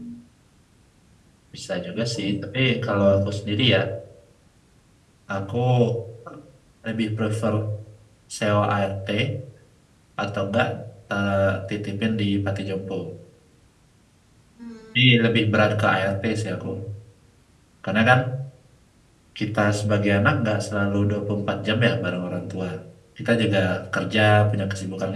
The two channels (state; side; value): identical; both; correlation 1.00